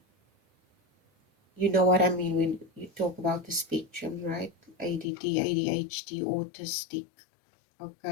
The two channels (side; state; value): right; drops out; at 5.1 s